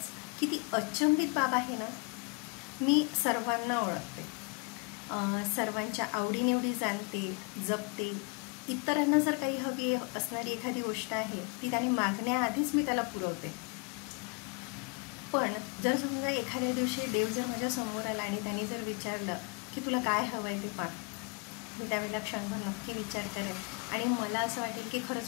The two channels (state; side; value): quieter; right; 31.1 dB